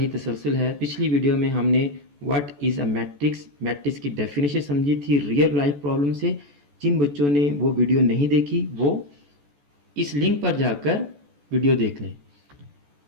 तसलसल है। पिछली वीडियो में हमने what is a matrix, matrix की डेफिनेशन समझी थी रियल लाइफ प्रॉब्लम से। जिन बच्चों ने वो वीडियो नहीं देखी वो इस लिंक पर जाकर वीडियो देख लें।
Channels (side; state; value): left; late; 14 ms